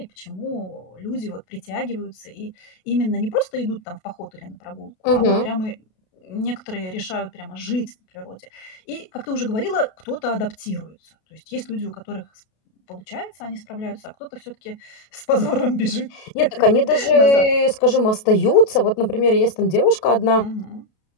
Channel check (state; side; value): late; right; 32 ms